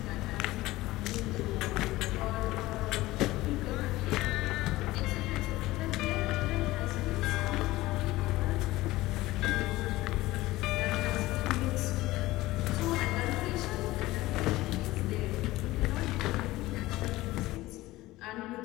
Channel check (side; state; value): right; quieter; 18.1 dB